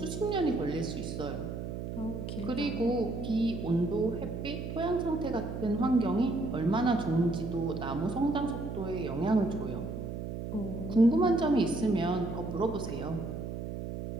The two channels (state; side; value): noise; right; hum, 6 dB below the sound